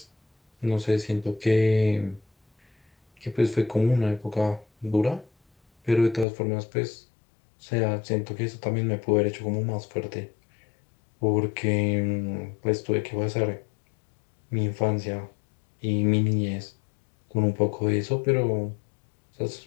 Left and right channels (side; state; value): right; drops out; at 6.2 s